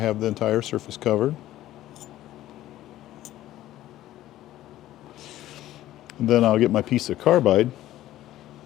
the entire surface covered. And then I'll get my piece of carbide,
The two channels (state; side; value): quieter; right; 14.2 dB